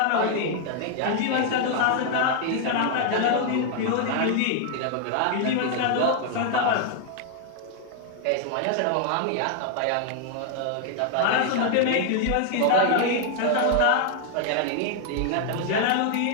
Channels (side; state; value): both; different; correlation 0.00